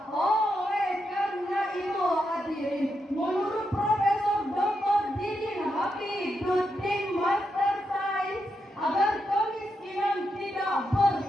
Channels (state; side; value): normal; both; correlation 0.84